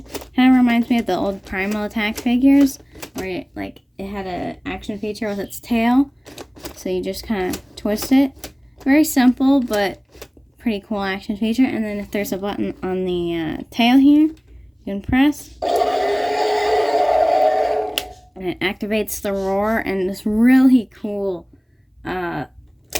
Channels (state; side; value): identical; both; correlation 1.00